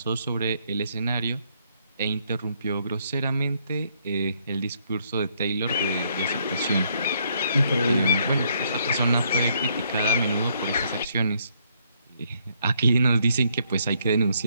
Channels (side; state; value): both; inverted; correlation -0.71